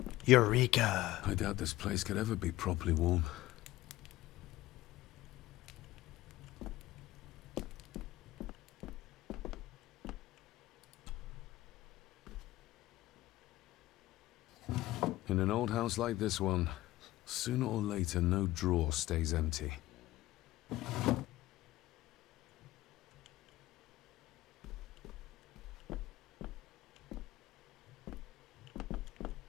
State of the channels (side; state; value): right; quieter; 16.8 dB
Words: Eureka! I doubt this place could ever be properly warm. In an old house like this one, sooner or later no drawer stays empty.